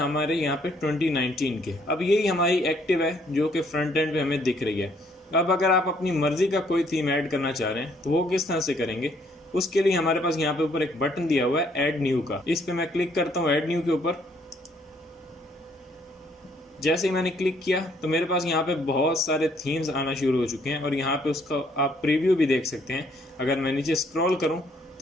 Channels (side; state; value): both; normal; correlation 0.66